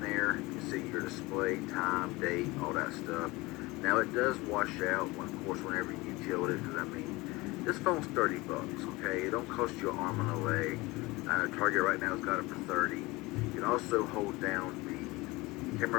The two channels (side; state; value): right; quieter; 22.2 dB